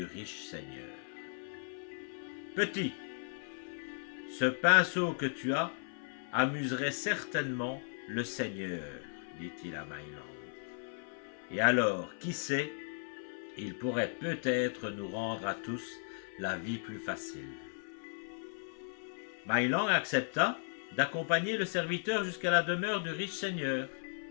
riche seigneur. « Petit, ce pinceau que tu as amuserait certainement le seigneur, dit-il à My Lang. Et alors, qui sait, il pourrait peut-être nous rendre à tous la vie plus facile. » My Lang accepta d'accompagner le serviteur jusqu'à la demeure du riche seigneur.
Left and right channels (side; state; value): right; silent; 54 dB below the other